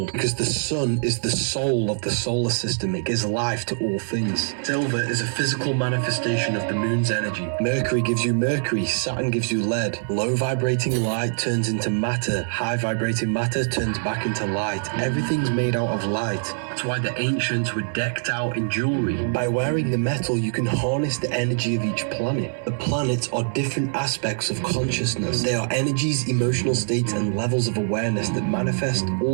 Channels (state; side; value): silent; left; 59 dB below the other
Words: because the sun is the soul of the solar system. It gives life to all things. Silver is a physical manifestation of the moon's energy. Mercury gives you mercury, Saturn gives you lead. Low vibrating light turns into matter, high vibrating matter turns back into light. Everything's made out of light. That's why the ancients were decked out in jewelry. By wearing the metal, you can harness the energy of each planet. The planets are different aspects of consciousness. They are energies, emotional states, and levels of awareness that manifest